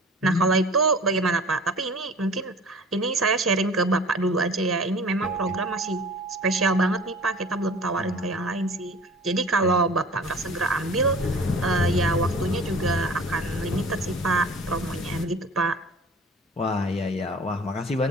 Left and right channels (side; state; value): both; normal; correlation 0.43